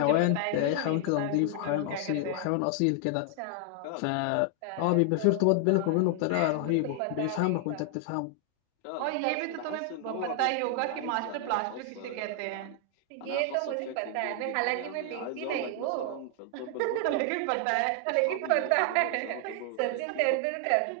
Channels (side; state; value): both; different; correlation 0.00